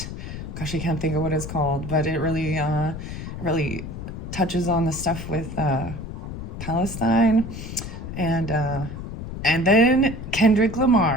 Gosh, I can't think of what it's called, but it really touches on the stuff with Palestine and then Kendrick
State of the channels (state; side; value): noise; left; rumble, 8 dB below the sound